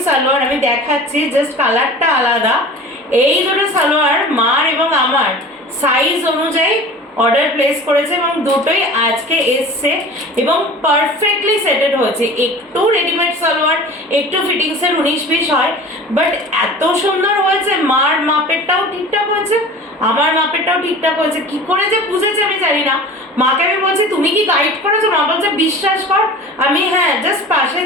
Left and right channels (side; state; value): both; normal; correlation 0.39